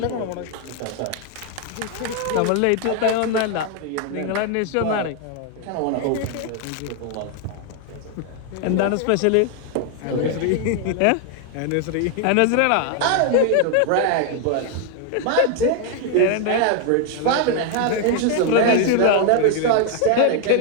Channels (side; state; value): both; different; correlation 0.00